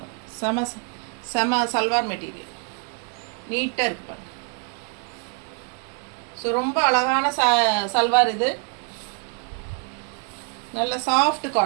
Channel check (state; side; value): quieter; left; 38.2 dB